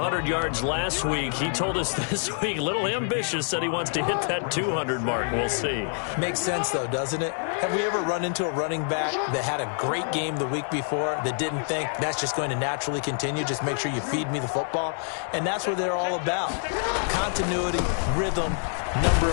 yards last week. He told us this week, a little ambitious, said he wants to hit that 200 mark. We'll see. Makes sense, though, doesn't it? Have we ever run into a running back that had a great game the week before that didn't think that's just going to naturally continue? Just make sure you feed me the football. And that's what they're all about. Continuity, rhythm, number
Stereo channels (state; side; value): silent; right; 61 dB below the other